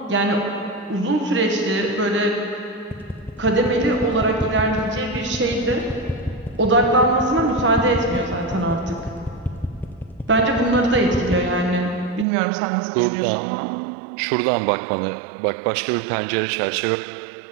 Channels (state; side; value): drops out; left; at 12.2 s